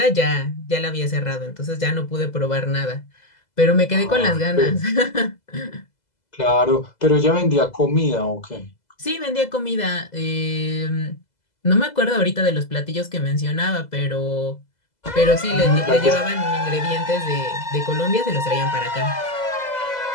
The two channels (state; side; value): late; right; 2.0 ms